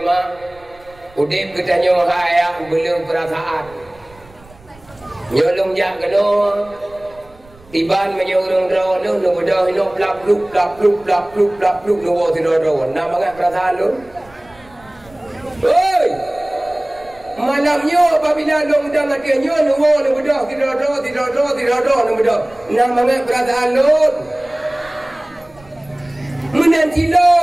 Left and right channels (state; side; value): noise; right; rumble, 25 dB below the sound